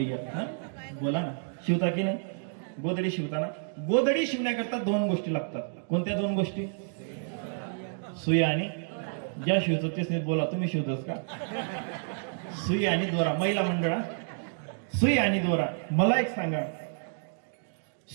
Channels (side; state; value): left; silent; digital silence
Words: घ्या. बोला ना, शिवता की नाही? गोधडी शिवताना, गोधडी शिवण्याकरता दोन गोष्टी लागतात. कोणत्या दोन गोष्टी? सुई आणि ज्या शिवतो तेच नाही. बोला, तुम्ही शिवतोस का? सुई आणि दोरा. महिला मंडळा, सुई आणि दोरा. मला एक सांगा,